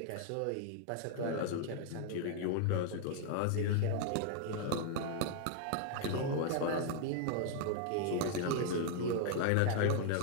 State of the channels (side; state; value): both; different; correlation -0.01